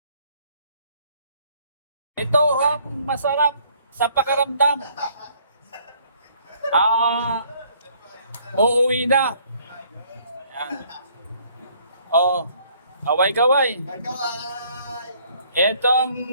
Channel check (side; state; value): both; inverted; correlation -0.62